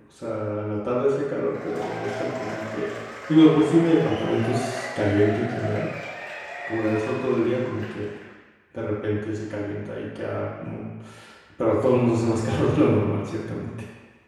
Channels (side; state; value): both; identical; correlation 1.00